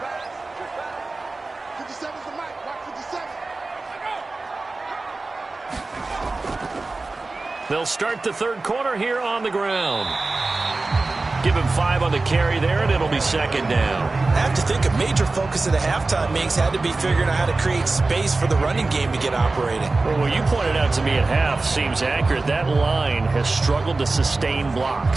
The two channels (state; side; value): quieter; left; 3.4 dB